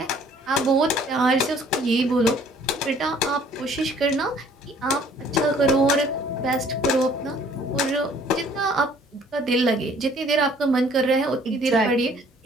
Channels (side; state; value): both; normal; correlation 0.57